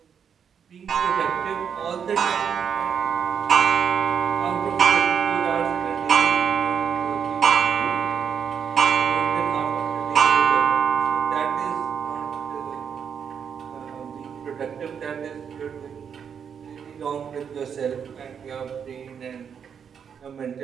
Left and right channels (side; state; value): left; quieter; 7.4 dB